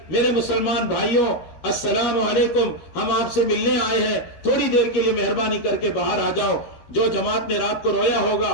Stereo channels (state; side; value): late; right; 13 ms